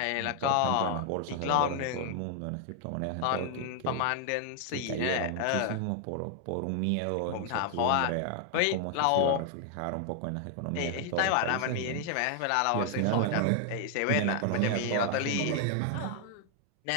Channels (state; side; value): different; both; correlation 0.00